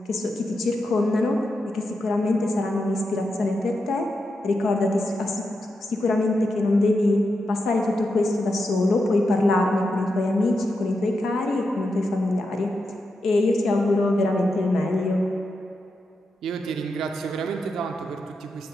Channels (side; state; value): both; normal; correlation 0.87